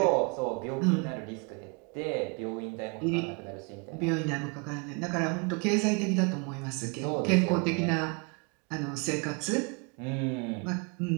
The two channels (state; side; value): quieter; left; 33.3 dB